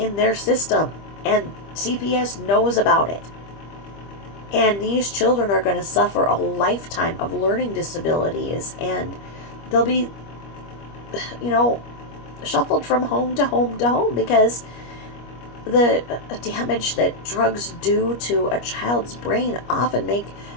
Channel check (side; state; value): right; late; 25 ms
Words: their system, and CPS knows about it. And these children are going to suffer a lifetime of learning disabilities, and they'll be, shuffled from home to home to home, because the damage that drugs do to a child's brain often make